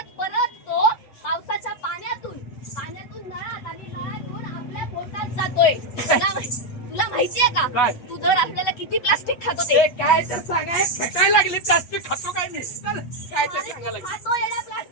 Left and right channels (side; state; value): right; late; 8.0 ms